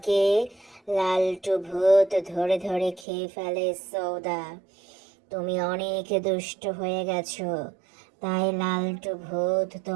লালটু ভূত ধরে ধরে খেয়ে ফেলে সৌদা। তুমি অনেক দুষ্ট হয়ে গেছো, তাই লালটু ভূত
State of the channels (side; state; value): left; drops out; at 3.1 s